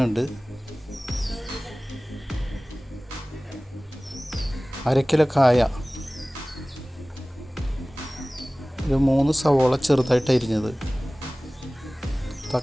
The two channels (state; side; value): normal; both; correlation 0.98